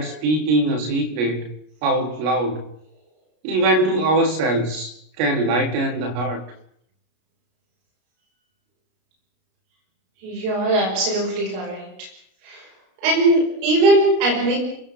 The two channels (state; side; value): late; left; 33 ms